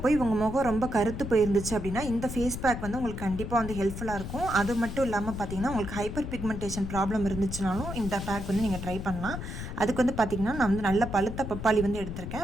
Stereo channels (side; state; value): left; noise; rumble, 7 dB below the sound